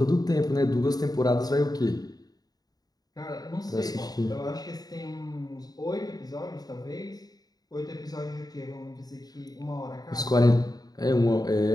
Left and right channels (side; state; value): right; late; 0.19 ms